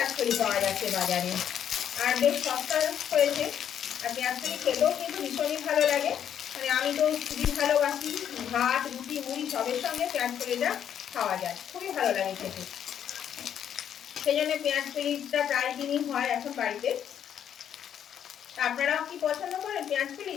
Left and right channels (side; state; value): right; quieter; 9.3 dB